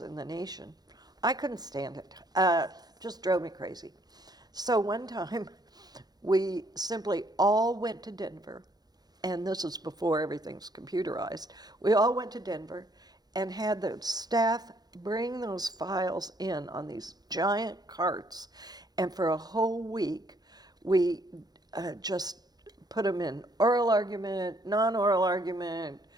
the nation. I couldn't stand it. Just drove me crazy. So one time, we simply all went to Denver, and this is before everything's computerized. We all went to Denver and had the staff bring those files in on these giant carts, and for a whole week, we just put them in oral argument, non-oral argument,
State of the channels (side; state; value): left; late; 0.19 ms